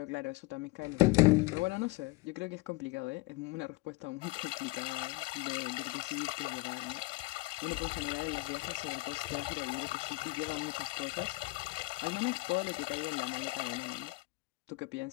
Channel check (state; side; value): quieter; right; 23.2 dB